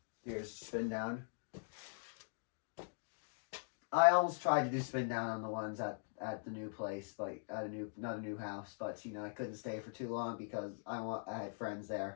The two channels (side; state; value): right; silent; digital silence